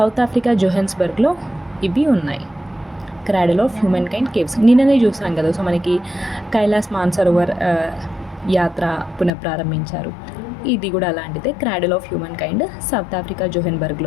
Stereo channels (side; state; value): right; drops out; at 9.3 s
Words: ఆఫ్రికా జోహెన్స్బర్గ్లో ఇవి ఉన్నాయి. క్రాడెల్ ఆఫ్ హ్యూమన్ కైండ్ కేవ్స్ నిన్ననే చూసాం కదా. సో మనకి కైలాస్ మాన్సరోవర్ యాత్ర పునఃప్రారంభించారు. ఇది కూడా అలాంటిదే, cradle of humankind South Africa